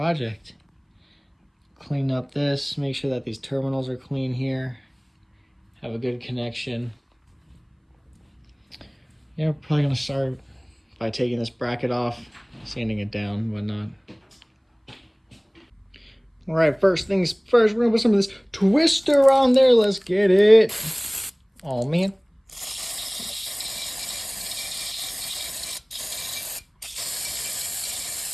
Clean up this, make sure that these terminals are clean here, have a good connection. Yeah, we're probably gonna start by taking this bracket off, sanding it down and whatnot. All right, first things first, we're gonna put some of this twister on there. Let's get it. Oh man.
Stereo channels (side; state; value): both; identical; correlation 1.00